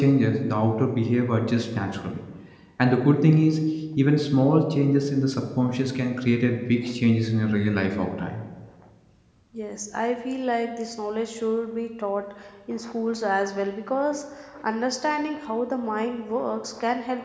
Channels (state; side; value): identical; both; correlation 1.00